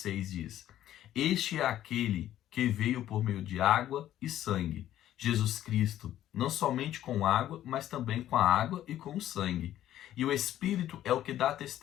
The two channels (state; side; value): quieter; right; 12.5 dB